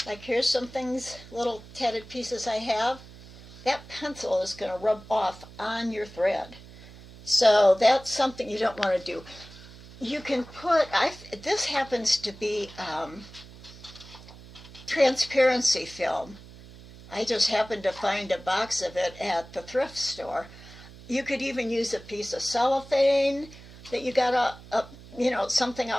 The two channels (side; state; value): right; noise; hum, 19 dB below the sound